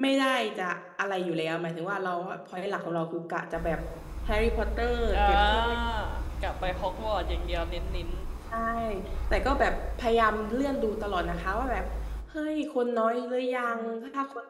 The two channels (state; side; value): identical; both; correlation 1.00